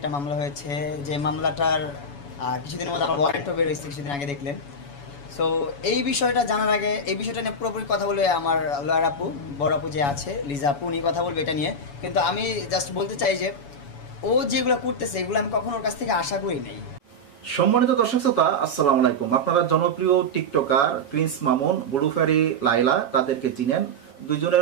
মামলা হয়েছে, যে মামলাটার কিছুদিনের মধ্যে আমার ওয়ারেন্টও বের হয়েছে, কিছুদিন আগে দেখলেন। সো এই বিষয়টা জানার আগে এই বিষয়টা নিয়ে পুরোপুরি কথা বলে আমার লয়ার আপু, বড় আপু যে আছে লিজা আপু, উনি কথা বলবে এটা নিয়ে। কিন্তু আমি জাস্ট বলতে চাই যে ও যেগুলো করতেছে এগুলো আমি কখনো ওর কাছ থেকে আশা করি নাই। সম্মানিত দর্শক শ্রোতা, আসসালামু আলাইকুম। আপনারা জনপ্রিয় টিকটকার প্রিন্স মামুন, ব্লুফেরি লাইলা তাদেরকে চিনেন।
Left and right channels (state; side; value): late; right; 7.1 ms